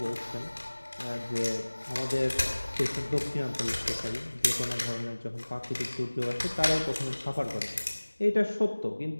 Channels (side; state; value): both; inverted; correlation -1.00